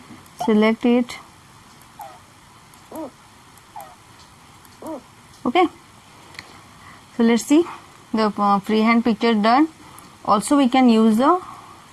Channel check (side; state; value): both; identical; correlation 1.00